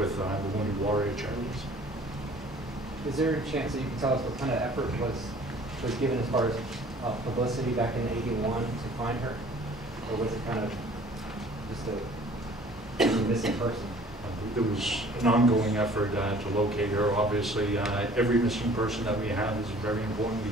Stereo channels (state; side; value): normal; both; correlation 0.52